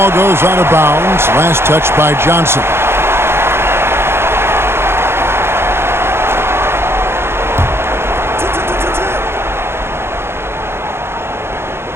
goes out of bounds. Last touch by Johnson.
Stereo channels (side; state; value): left; late; 0.12 ms